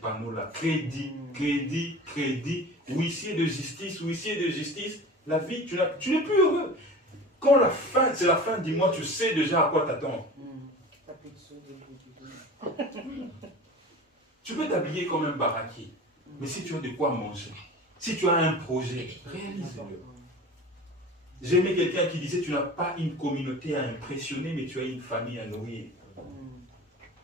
Crédit, crédit, crédit, huissier de justice. La vie, tu n'es plus heureux. Quand c'est la fin du mois, tu sais déjà à quoi t'attendre. Tu peux t'habiller comme un baraquet, mais si tu as de quoi manger, si tu as un projet, réalise-le. J'ai aimé quelqu'un qui disait, tu n'as pas une communauté à impressionner, mais tu as une famille à nourrir.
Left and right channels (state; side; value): normal; both; correlation 0.37